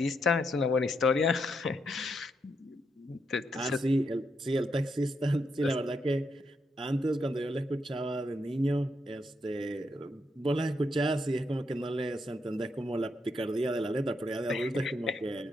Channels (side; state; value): both; normal; correlation 0.80